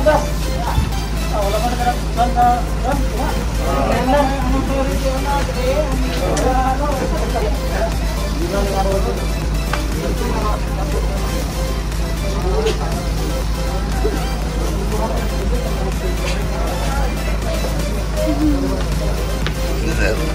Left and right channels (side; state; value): both; identical; correlation 1.00